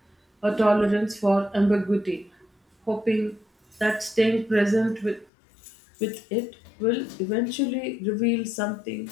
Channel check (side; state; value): right; drops out; at 5.3 s